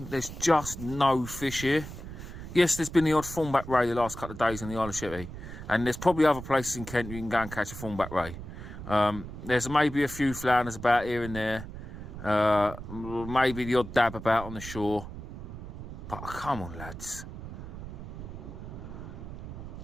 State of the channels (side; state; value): right; noise; rumble, 10 dB below the sound